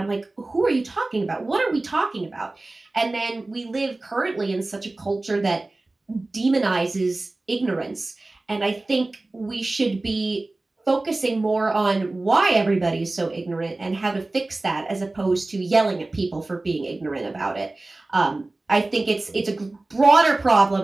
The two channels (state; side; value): quieter; left; 3.0 dB